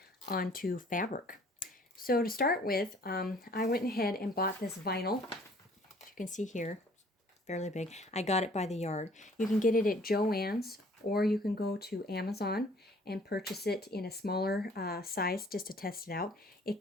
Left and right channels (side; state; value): both; normal; correlation 0.56